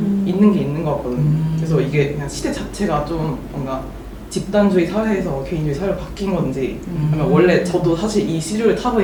있는 게 있는 것 같거든요. 그래서 이게 그냥 시대 자체가 좀 뭔가 집단주의 사회에서 개인주의 사회로 바뀐 건지 아니면 원래 저도 사실 이 시류를 타고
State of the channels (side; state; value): both; identical; correlation 1.00